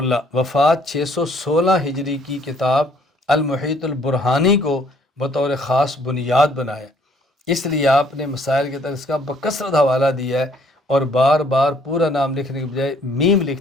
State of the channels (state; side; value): normal; both; correlation 0.62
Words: وفات 616 ہجری کی کتاب المحیط البرہانی کو بطور خاص بنیاد بنایا۔ اس لیے آپ نے مسائل کے تحت اس کا بکثرت حوالہ دیا ہے اور بار بار پورا نام لکھنے کے بجائے میم